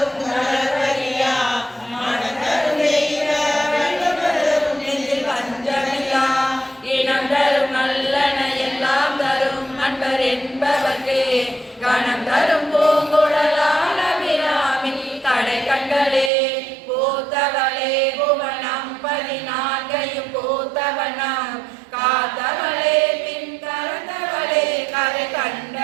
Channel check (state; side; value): drops out; left; at 16.3 s